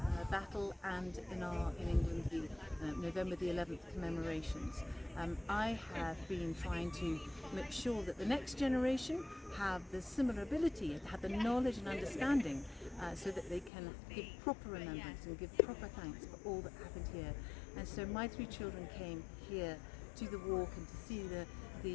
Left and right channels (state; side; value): drops out; right; at 13.7 s